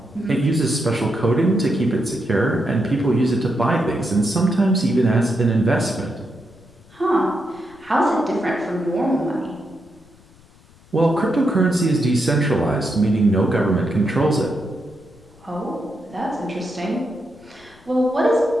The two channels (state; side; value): noise; left; rumble, 27 dB below the sound